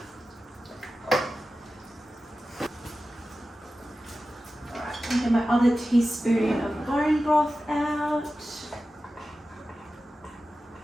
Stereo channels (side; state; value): both; normal; correlation 0.94